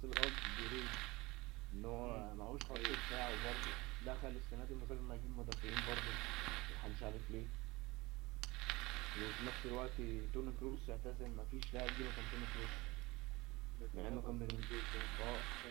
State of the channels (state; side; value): quieter; left; 22.2 dB